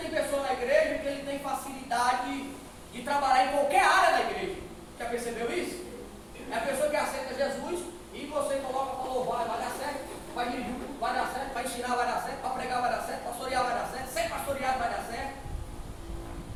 pessoa na igreja que ele tem facilidade de trabalhar em qualquer área da igreja. Já percebeu isso? É a pessoa que aceita Jesus e você coloca para louvar, vai dar certo, vai dirigir, vai dar certo, vai ensinar, vai dar certo, para pregar vai dar certo, pastorear vai dar certo, ser pastoreado vai dar certo.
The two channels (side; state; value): both; identical; correlation 1.00